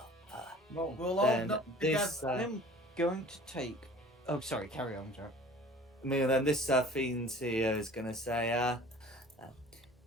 Well, We'll all Then knock this, together. I'm going to take. Oh, sorry. Carry on, Joe. then this fiend here is gonna say,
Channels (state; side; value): normal; both; correlation 0.46